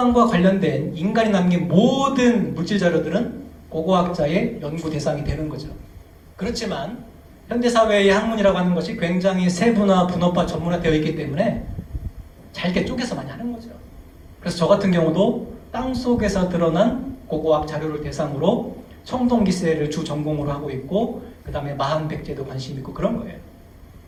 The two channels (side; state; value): both; identical; correlation 1.00